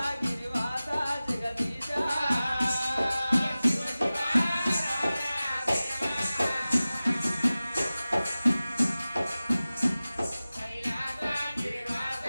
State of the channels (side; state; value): both; inverted; correlation -0.97